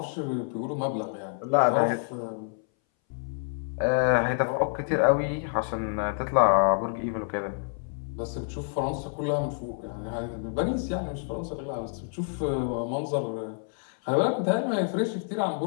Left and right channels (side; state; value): right; silent; 59 dB below the other